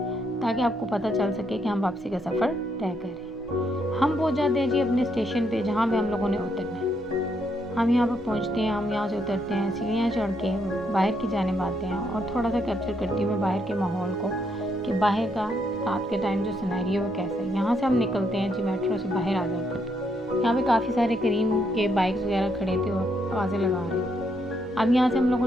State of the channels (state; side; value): normal; both; correlation 0.75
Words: ताकि आपको पता चल सके कि हम वापसी का सफ़र तय करें। हम पहुंच जाते हैं जी अपने स्टेशन पे, जहाँ पे हम लोगों ने उतरना है। हम यहाँ पर पहुँचते हैं, हम यहाँ से उतरते हैं, सीढ़ियाँ चढ़ के बाहर की जानिब आते हैं, और थोड़ा सा कैप्चर करती हूँ मैं बाहर के माहौल को कि बाहर का रात के टाइम जो सिनेरियो है कैसा है। यहाँ से हम निकलते हैं जी, मेट्रो से बाहर आ जाते हैं। यहाँ पे काफ़ी सारे करीम के बाइक्स वगैरह खड़े थे और आवाज़ें लगा रहे थे। अब यहाँ से हम लोगों